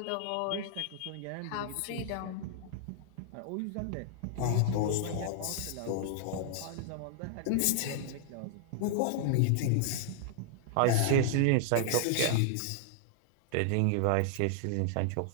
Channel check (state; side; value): different; both; correlation -0.01